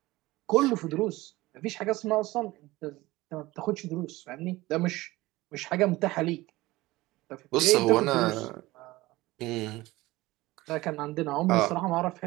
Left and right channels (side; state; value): left; quieter; 19.2 dB